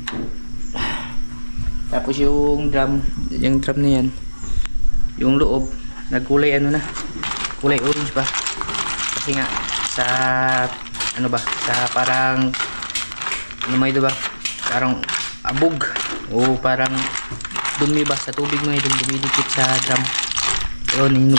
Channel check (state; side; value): inverted; both; correlation -1.00